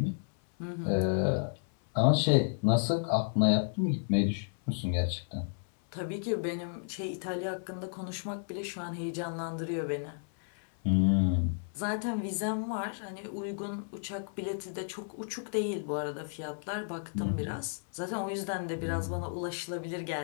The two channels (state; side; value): silent; right; 56 dB below the other